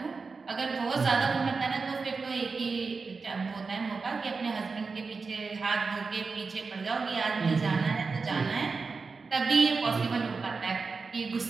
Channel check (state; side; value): quieter; left; 4.5 dB